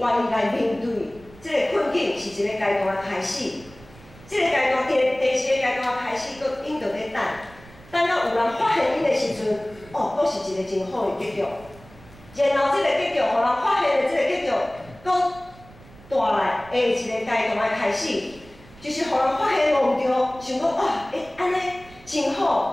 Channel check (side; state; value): right; noise; rumble, 22 dB below the sound